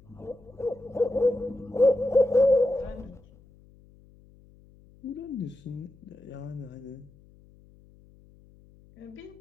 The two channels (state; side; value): noise; left; hum, 26 dB below the sound